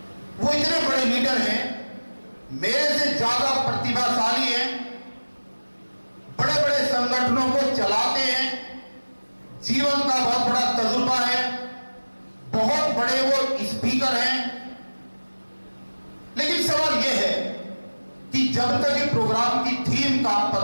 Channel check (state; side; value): inverted; both; correlation -1.00